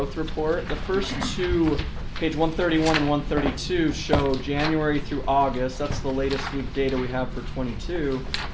report. The first two, page 131 and 132, show January through August. That's the latest week data we have for 22.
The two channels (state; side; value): identical; both; correlation 1.00